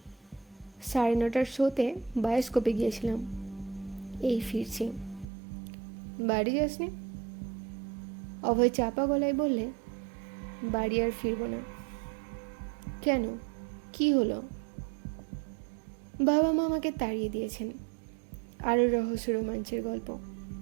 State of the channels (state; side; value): drops out; left; at 5.2 s